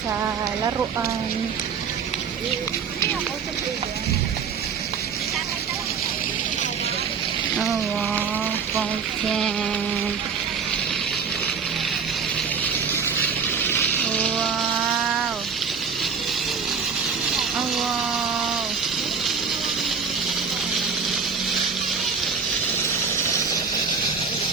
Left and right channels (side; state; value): left; quieter; 6.0 dB